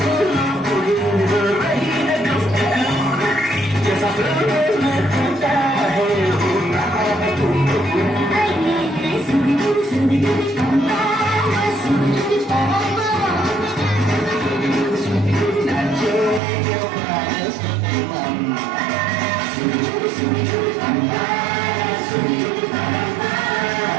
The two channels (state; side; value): drops out; left; at 16.4 s